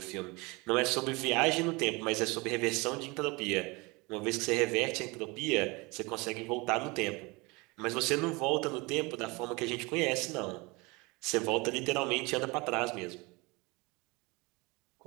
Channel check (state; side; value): quieter; left; 25.8 dB